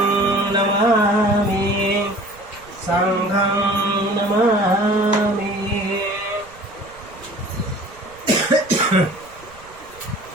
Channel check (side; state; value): right; noise; rumble, 23 dB below the sound